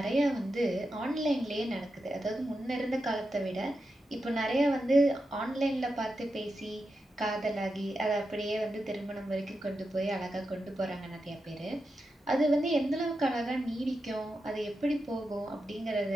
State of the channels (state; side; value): normal; both; correlation 0.88